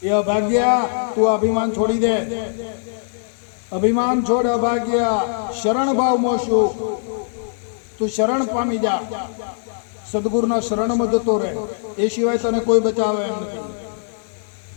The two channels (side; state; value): right; silent; digital silence